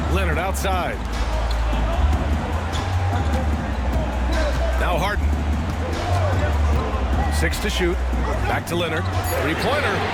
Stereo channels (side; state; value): both; identical; correlation 1.00